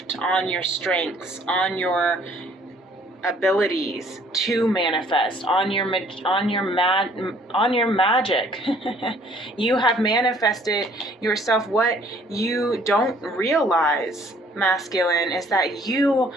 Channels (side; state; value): both; normal; correlation 0.59